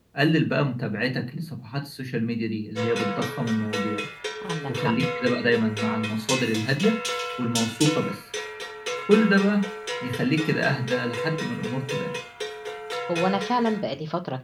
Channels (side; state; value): both; identical; correlation 1.00